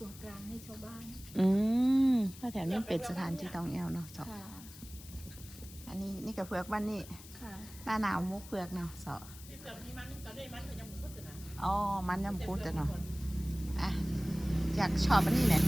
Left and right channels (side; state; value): left; noise; hiss, 17 dB below the sound